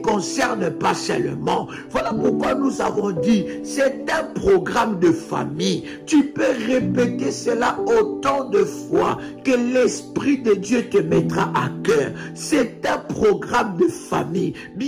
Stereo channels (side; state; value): both; identical; correlation 1.00